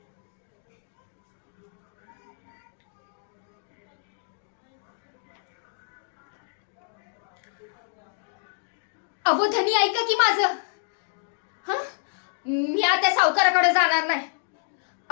अहो धनी, ऐका की माझं. मी आता सावकाराकडे जाणार नाही.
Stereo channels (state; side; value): silent; right; digital silence